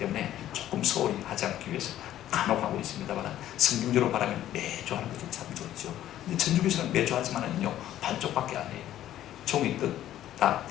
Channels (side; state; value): right; quieter; 12.5 dB